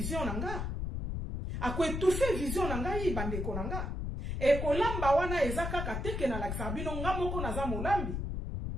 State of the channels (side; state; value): left; noise; rumble, 3 dB below the sound